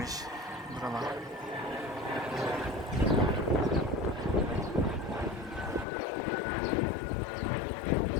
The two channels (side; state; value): right; drops out; at 5.9 s